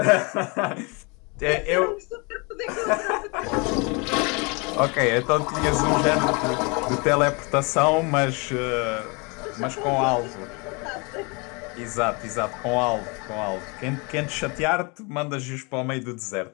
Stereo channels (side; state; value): right; quieter; 30.3 dB